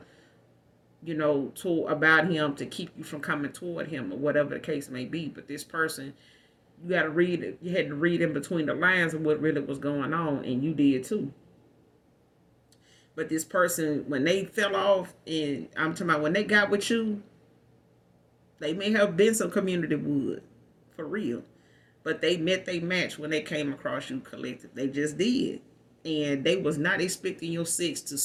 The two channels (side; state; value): both; identical; correlation 1.00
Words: to about him to keep you from coming toward him or whatever the case may be. But this person, you got to read it. You had to read in between the lines of what really was going on, and you did too. But this person, when they fell off, and I'm talking about when they got with you, they may have been some community wood, for real. But they met their match when they came across you collective. They just did. And they was not expecting your six to